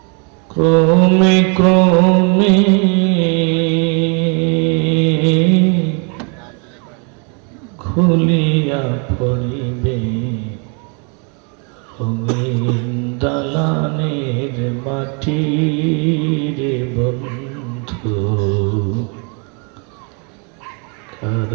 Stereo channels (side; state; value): left; quieter; 36.4 dB